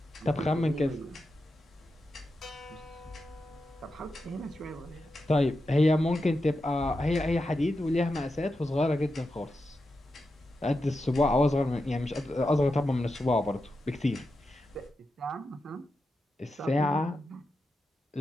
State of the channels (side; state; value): both; normal; correlation 0.89